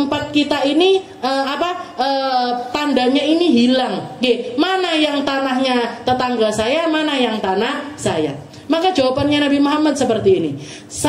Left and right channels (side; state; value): both; identical; correlation 1.00